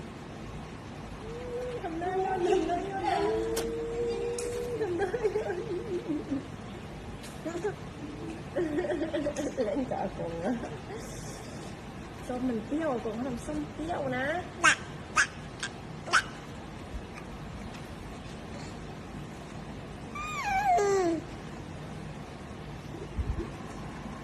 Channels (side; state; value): both; identical; correlation 1.00